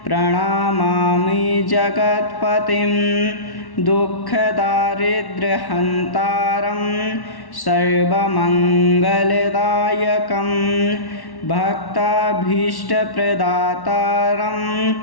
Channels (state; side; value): late; right; 1.1 ms